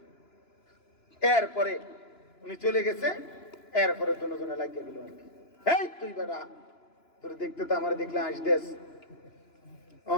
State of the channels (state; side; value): late; right; 2.9 ms